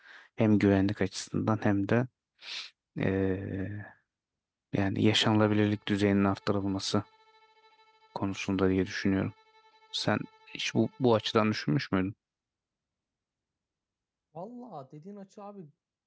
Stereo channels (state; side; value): identical; both; correlation 1.00